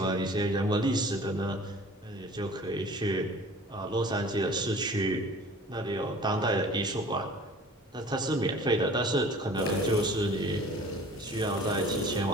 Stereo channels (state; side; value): normal; both; correlation 0.46